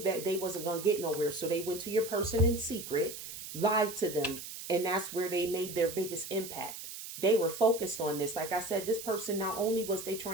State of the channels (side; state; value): right; noise; hiss, 10 dB below the sound